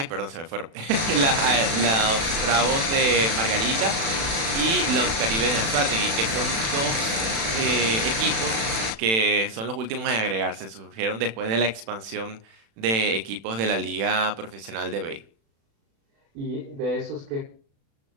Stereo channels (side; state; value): left; late; 36 ms